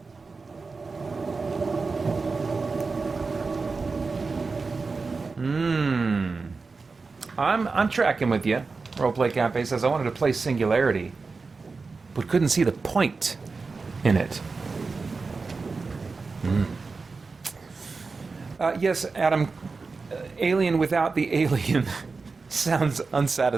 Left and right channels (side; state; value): left; quieter; 4.3 dB